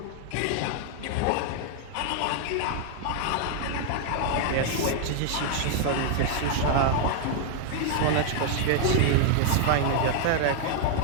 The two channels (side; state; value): both; different; correlation 0.00